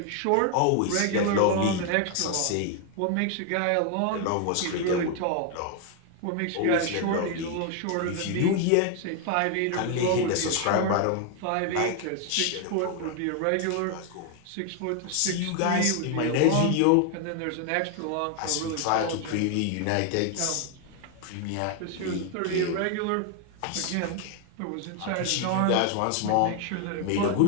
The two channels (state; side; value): different; both; correlation 0.00